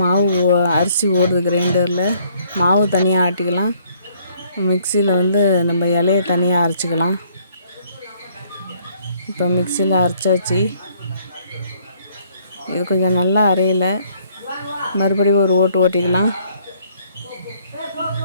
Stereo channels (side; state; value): both; inverted; correlation -0.64